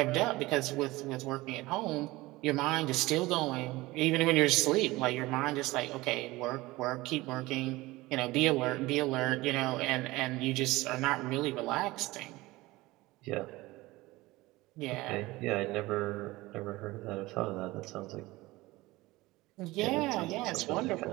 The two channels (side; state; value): left; quieter; 19.9 dB